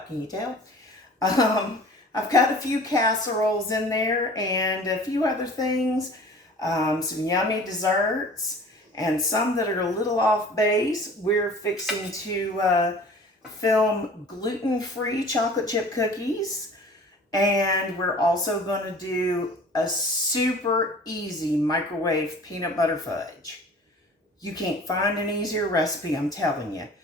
can you tell? I've got a few casseroles in there and a few other things. Some yummy desserts and some that are a little off base. We're fixing to film gluten-free chocolate chip cookies. And we're also going to do a super easy microwave peanut butter fudge. You can't find an easier recipe, I'm telling you.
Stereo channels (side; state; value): both; normal; correlation 0.45